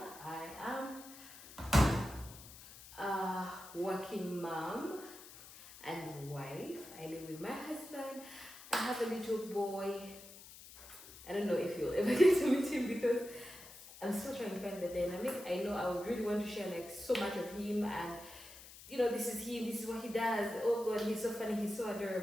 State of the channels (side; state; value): left; noise; hiss, 17 dB below the sound